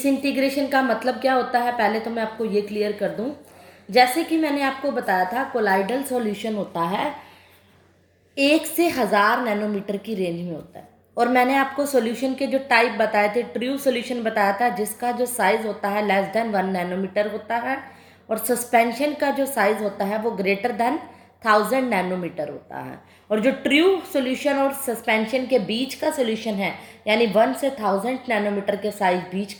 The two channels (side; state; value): both; identical; correlation 1.00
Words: का मतलब क्या होता है पहले तो मैं आपको ये क्लियर कर दूं। जैसे कि मैंने आपको बताया था कोलाइडल सॉल्यूशन होता है 1 से 1000 नैनोमीटर की रेंज में होता है और मैंने आपको सॉल्यूशन के जो टाइप बताए थे, ट्रू सॉल्यूशन बताया था जिसका जो साइज़ होता है लेस देन 1 नैनोमीटर होता है और सस्पेंशन का जो साइज़ होता है वो ग्रेटर देन 1000 नैनोमीटर होता है। और जो ट्रू सॉल्यूशन और सस्पेंशन के बीच का सॉल्यूशन है यानी 1 से 1000 नैनोमीटर के साइज बीच